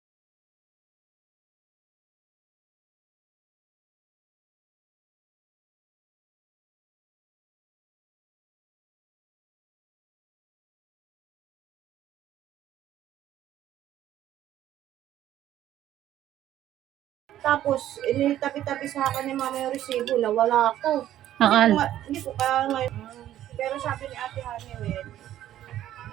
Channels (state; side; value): quieter; left; 12.4 dB